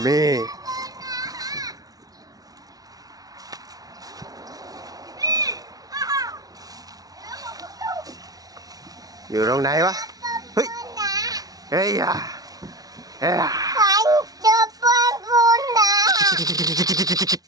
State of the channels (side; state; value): left; late; 0.18 ms